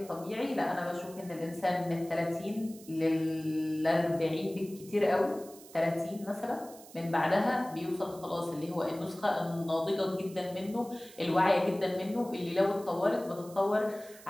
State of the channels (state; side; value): noise; right; hiss, 20 dB below the sound